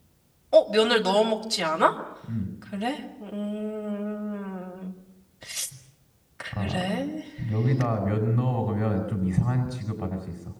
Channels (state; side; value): identical; both; correlation 1.00